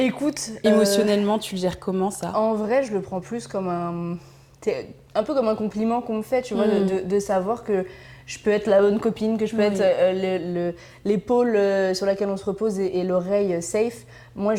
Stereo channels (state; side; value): identical; both; correlation 1.00